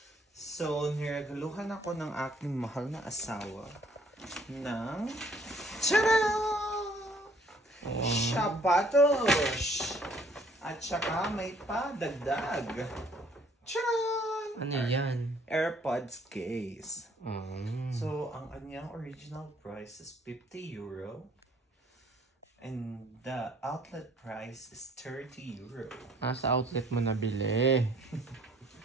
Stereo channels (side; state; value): both; normal; correlation 0.61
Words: So, niregaluhan ako ng aking mahal na asawa ng sapatos! At saka may padagdag. Charan! Ano yan? AirPods case. Mm. So, ang kanyang original price is €50. And the outlet price is €30. Sa outlet mo nabili.